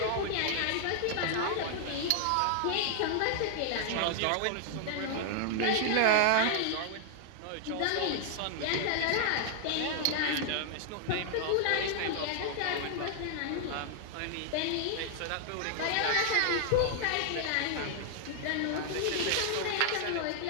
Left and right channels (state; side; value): different; both; correlation 0.00